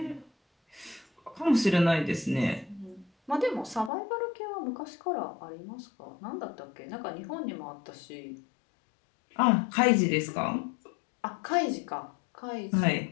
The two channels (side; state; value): right; drops out; at 3.9 s